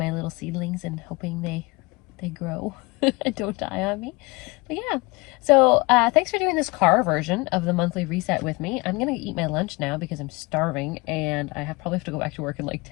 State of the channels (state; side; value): quieter; right; 25.2 dB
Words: little seedlings and hoping they grow and don't die on me. But yeah, so thanks for doing this car version of the monthly reset with me. I'm gonna eat my lunch now because I'm starving, and I probably have to go back to work in like